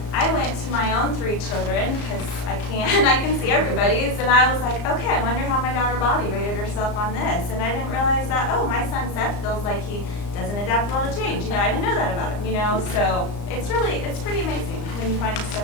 I went to my own 3 children because I can see everybody's, and I was like, okay, I wonder how my daughter Bobby rated herself on this. And I didn't realize that, oh, my son Seth feels like he doesn't adapt well to change. You know, I didn't know that about him, you know. So it's pretty amazing when you find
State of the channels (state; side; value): late; right; 34 ms